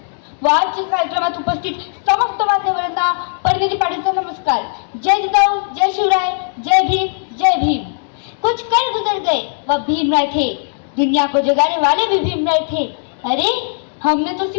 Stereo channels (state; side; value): silent; right; digital silence